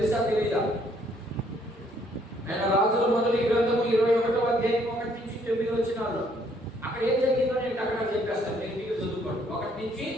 తెలీదా? ఆయన రాజుల మొదటి గ్రంథము 21వ అధ్యాయం 1 నుంచి 9 వచనాలు. అక్కడ ఏం జరిగిందో నేను అక్కడ చెప్పేస్తాను, నేను మీకు చదువుకోండి. 1 నుంచి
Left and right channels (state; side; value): normal; both; correlation 0.66